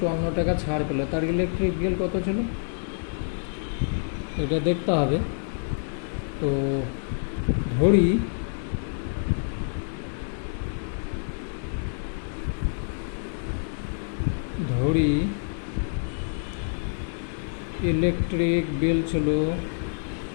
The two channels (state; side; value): silent; right; digital silence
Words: টাকা ছাড় পেল, তার ইলেকট্রিক বিল কত ছিল, এটা দেখতে হবে। তো ধরি ইলেকট্রিক বিল ছিল